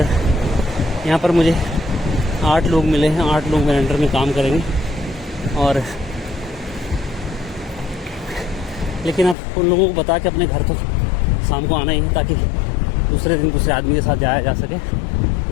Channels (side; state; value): right; drops out; at 9.3 s